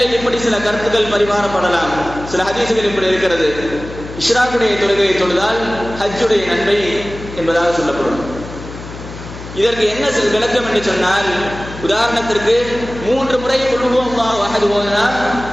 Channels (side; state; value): left; noise; hum, 13 dB below the sound